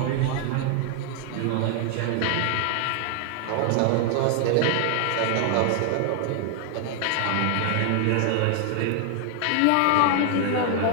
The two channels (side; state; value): both; different; correlation 0.00